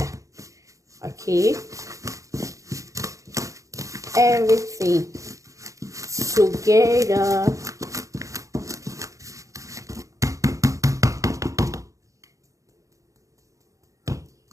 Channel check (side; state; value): left; late; 0.16 ms